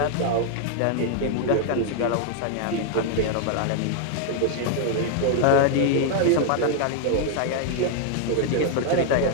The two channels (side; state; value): both; different; correlation 0.00